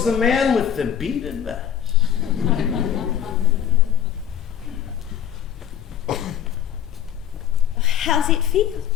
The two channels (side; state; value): right; quieter; 9.8 dB